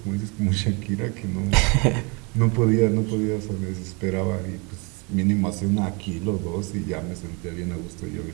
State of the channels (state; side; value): quieter; left; 31.0 dB